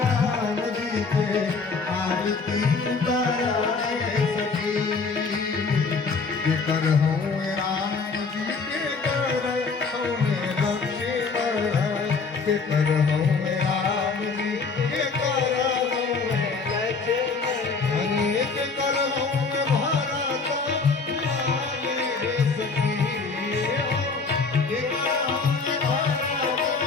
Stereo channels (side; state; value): right; quieter; 4.5 dB